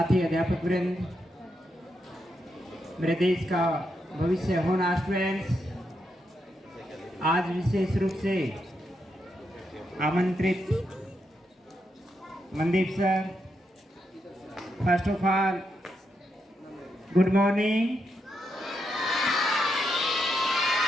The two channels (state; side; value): normal; both; correlation 0.82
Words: अध्यापक वृंद, मेरे देश का भविष्य होना स्टूडेंट्स, आज विशेष रूप से आमंत्रित Mandeep sir, first of all good morning.